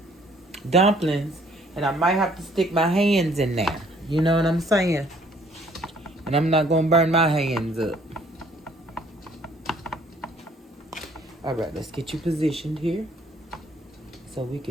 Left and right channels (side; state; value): both; normal; correlation 0.61